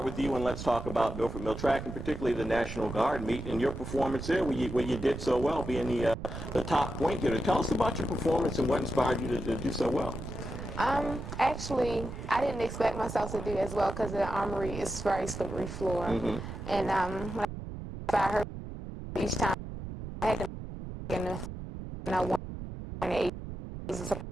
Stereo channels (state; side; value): noise; right; rumble, 8 dB below the sound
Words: with you, and let's talk about Milford Mill Track, and particularly the National Guard meet and your performance there, where you did so well, being the top point getter. Tell us about your performance and what inspired you to do so well. Actually, I didn't expect myself to do as well because the armory is very slippery floor. Mm-hmm. And when I heard each time, I had to make enough, and I won 8